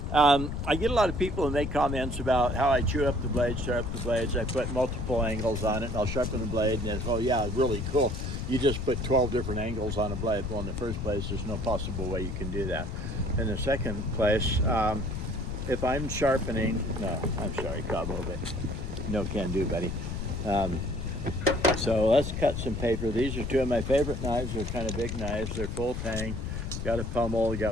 I get a lot of people who make comments about how I chew up the blades, sharpen the blades. I put multiple angles on it, and I'll sharpen the blade. And it's, oh yeah, really cool. You just put 12 different angles on a blade. Well, in the first place, there's no possible way you can do that. In the second place, if I'm sharpening, no, I'm sorry, Cabo, but no can do, buddy. So let's cut some paper. These are two of my favorite knives. They're kind of big knives. They're full tang. Got a pommel,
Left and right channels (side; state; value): left; noise; rumble, 4 dB below the sound